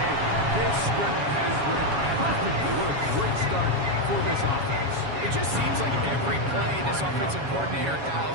This script has read perfectly. What a great start for this offense. It just seems like every play this offensive coordinator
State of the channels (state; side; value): late; left; 7.2 ms